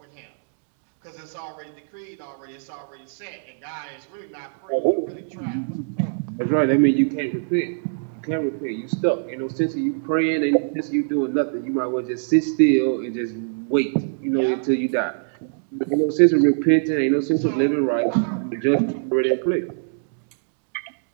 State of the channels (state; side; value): silent; left; digital silence